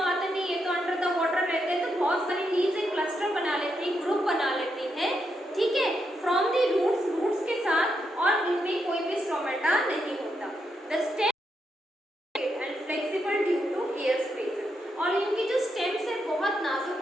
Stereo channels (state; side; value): normal; both; correlation 0.82